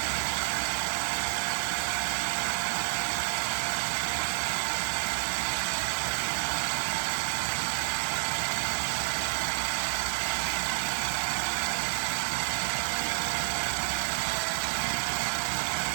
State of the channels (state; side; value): silent; left; digital silence